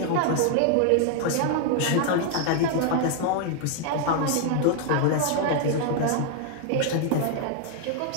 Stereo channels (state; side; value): different; both; correlation 0.00